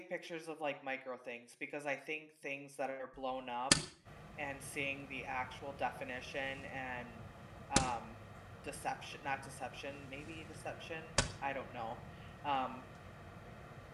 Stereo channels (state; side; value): identical; both; correlation 1.00